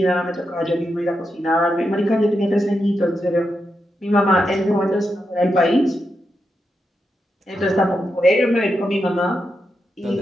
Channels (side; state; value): both; normal; correlation 0.85